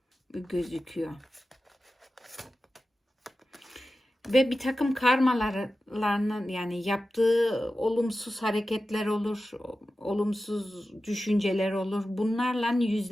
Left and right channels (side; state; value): both; normal; correlation 0.93